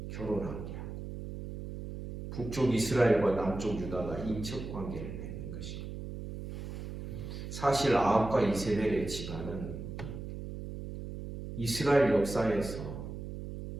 결혼하게 하고 북쪽 이스라엘과 남쪽 유다가 인척 관계를 맺는 것입니다. 사실 아합과 이세벨의 집안은 이스라엘 역사에서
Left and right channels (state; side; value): noise; right; hum, 8 dB below the sound